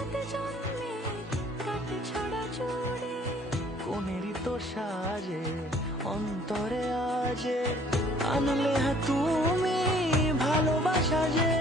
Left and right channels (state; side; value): normal; both; correlation 0.57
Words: জন্মে কাটে ছড়া ছড়ে কোনেরই তো সাজে অন্তরে আজে আনলে তুমি ভালোবাসা যে